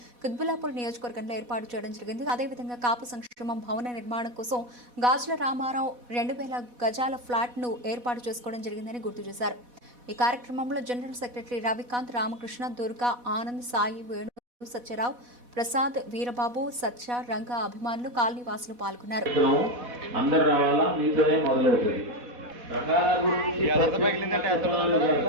కుత్బుల్లాపూర్ నియోజకవర్గంలో ఏర్పాటు చేయడం జరిగింది. అదేవిధంగా కాపు సంక్షేమం భవన నిర్మాణం కోసం గాజుల రామారావు 2000 గజాల ఫ్లాట్ ను ఏర్పాటు చేసుకోవడం జరిగిందని గుర్తు చేశారు. ఈ కార్యక్రమంలో జనరల్ సెక్రటరీ రవికాంత్, రామకృష్ణ, దుర్గా, ఆనంద్, సాయి, వేణు, సత్యరావు, ప్రసాద్, వీరబాబు, సత్య, రంగా అభిమానులు, కాలనీ వాసులు పాల్గొన్నారు.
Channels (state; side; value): late; left; 4.1 ms